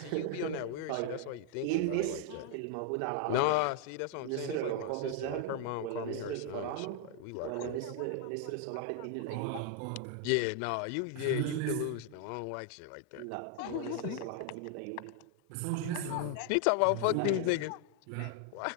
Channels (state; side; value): different; both; correlation 0.00